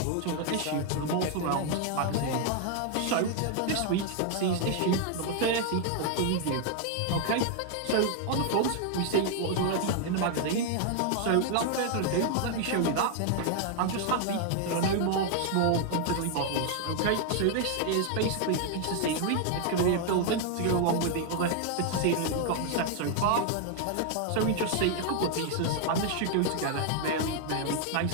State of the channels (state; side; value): different; both; correlation 0.00